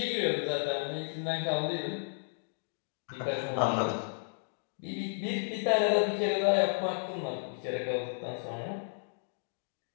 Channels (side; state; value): right; silent; digital silence